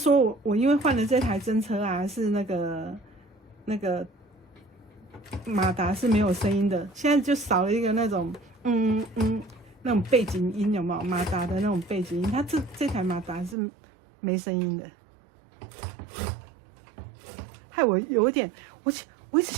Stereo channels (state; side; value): drops out; left; at 13.6 s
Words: 我因为换了这台真车啊，是那个马达是没有声音的，现在就少了一个那种那种背景音，有没有？马达的那种背景音，它这台马达是没声音的，害我有一点，我一直